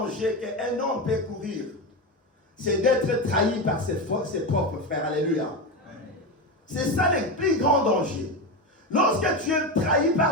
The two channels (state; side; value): normal; both; correlation 0.17